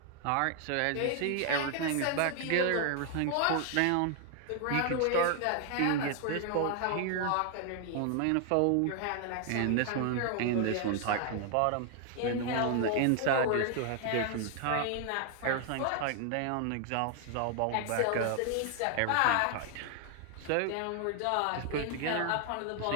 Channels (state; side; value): different; both; correlation 0.00